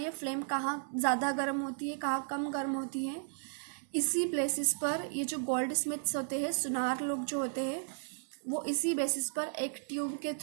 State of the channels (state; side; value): silent; left; digital silence